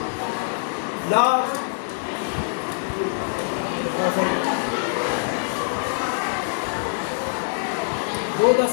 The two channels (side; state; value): right; silent; digital silence